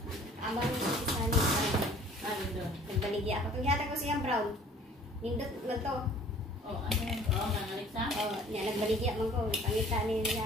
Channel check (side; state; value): both; normal; correlation 0.51